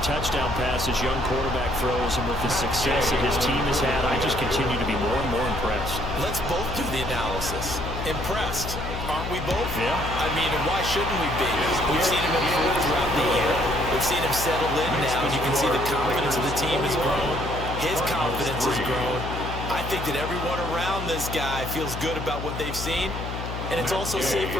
touchdown pass his young quarterback throws and with the success that his team has had, I just continue to be more and more impressed. Let's both do the analysis. Impressed, aren't we both? Yeah. I mean, and why shouldn't we be? We've seen him improve throughout the year. We've seen him settle in now, and you can see the confidence of the team has grown. His confidence has grown. I think that everyone around this guy feels good about what they've seen. And it's also safe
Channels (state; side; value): noise; left; hum, 6 dB below the sound